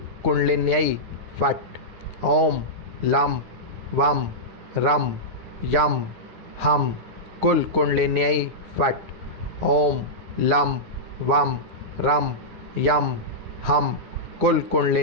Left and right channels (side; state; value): left; late; 9.7 ms